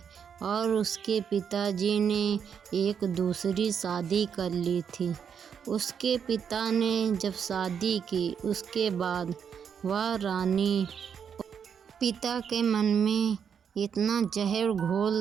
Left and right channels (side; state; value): left; quieter; 7.4 dB